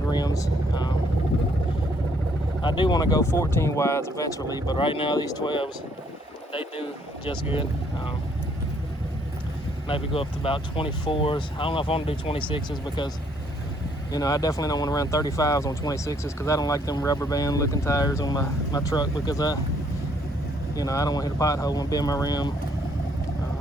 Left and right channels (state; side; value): normal; both; correlation 0.67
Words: rims. I do want to go 14 wides eventually, but right now these 12s, they do just good. Maybe go up to about 24s. I don't know if I want to do 26s because, you know, I definitely don't want to run 35s on 26s because I don't like them rubber band looking tires on my truck because I don't want to hit a pothole and bend my rim.